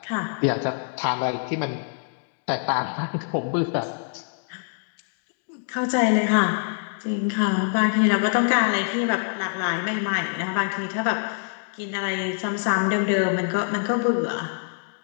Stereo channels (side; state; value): right; silent; digital silence